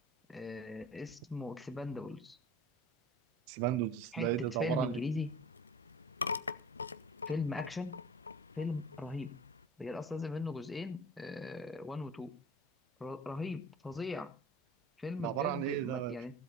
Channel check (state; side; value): normal; both; correlation 0.39